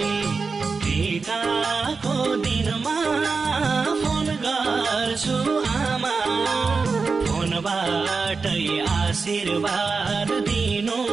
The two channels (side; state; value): left; quieter; 4.6 dB